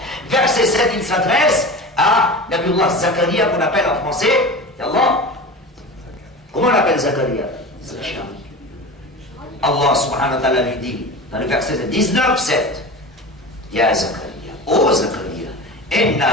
verset 7, il s'adresse à Nabiullah Zakaria, qu'on appelle en français, Allah. Comment on appelle Zakaria? Allah subhanahu wa ta'ala lui dit, dans le verset 19, 7, Ya Zakaria, ô Zakaria,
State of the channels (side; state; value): both; normal; correlation 0.31